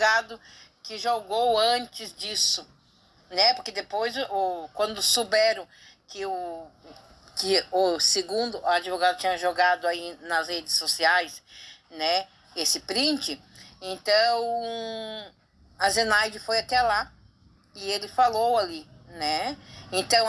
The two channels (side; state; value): both; identical; correlation 1.00